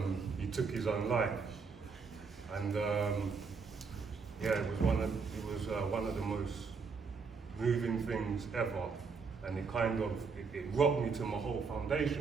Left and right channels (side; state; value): left; quieter; 5.1 dB